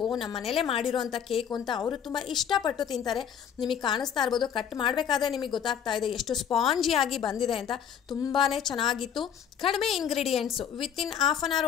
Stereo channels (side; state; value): right; quieter; 8.4 dB